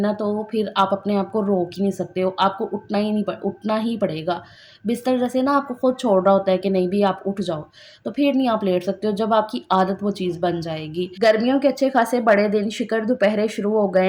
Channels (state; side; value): identical; both; correlation 1.00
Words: तो फिर आप अपने आप को रोक ही नहीं सकते हो। आपको उठना ही पड़ेगा। बिस्तर जैसे ना आपको खुद छोड़ रहा होता है कि नहीं भी आप उठ जाओ, तो फिर नहीं आप लेट सकते हो जब आपकी आदत वो चीज़ बन जाएगी। गर्मियों के अच्छे खासे बड़े दिन शिकर दोपहरे शुरू हो गए